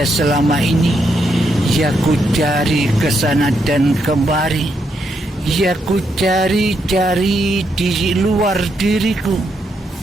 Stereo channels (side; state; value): both; normal; correlation 0.79